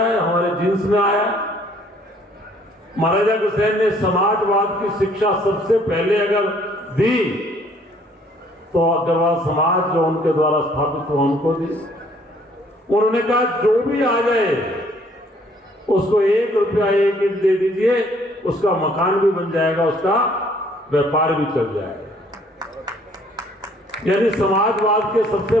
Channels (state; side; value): normal; both; correlation 0.61